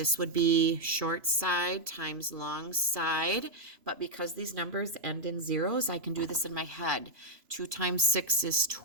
would be short side times long side, but because these numbers end in zeros, I can do this in my head. 2 times 6 is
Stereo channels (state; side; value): late; left; 3.0 ms